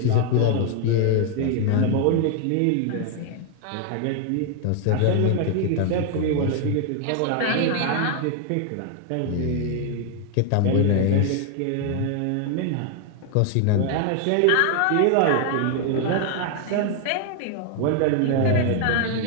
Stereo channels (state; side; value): different; both; correlation 0.00